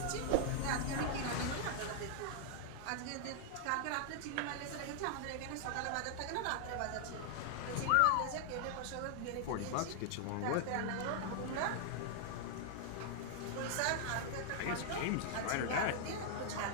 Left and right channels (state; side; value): different; both; correlation -0.01